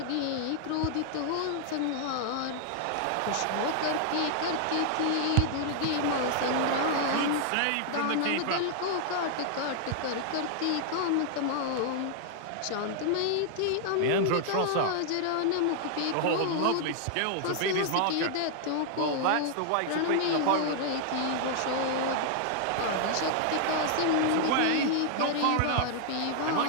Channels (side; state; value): both; different; correlation -0.01